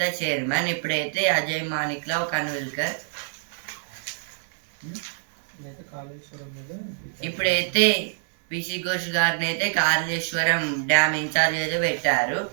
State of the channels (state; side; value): silent; left; digital silence